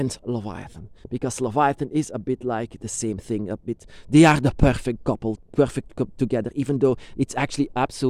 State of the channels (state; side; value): identical; both; correlation 1.00